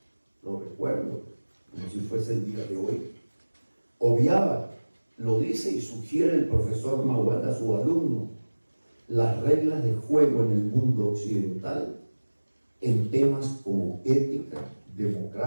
lo recuerdo como si fuese el día de hoy, obviaba, lo dice y sugiere el profesor Mawad a su alumno, las reglas de juego en el mundo occidental en temas como ética,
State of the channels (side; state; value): both; inverted; correlation -1.00